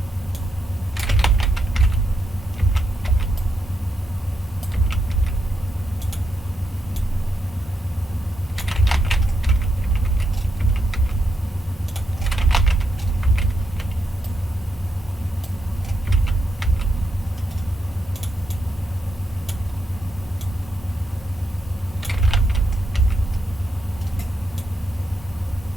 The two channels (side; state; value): both; normal; correlation 0.82